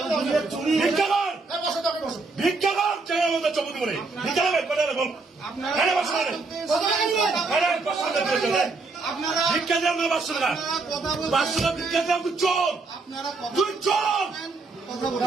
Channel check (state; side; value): quieter; left; 3.9 dB